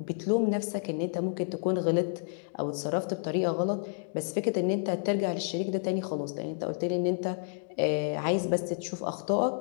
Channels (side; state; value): right; silent; digital silence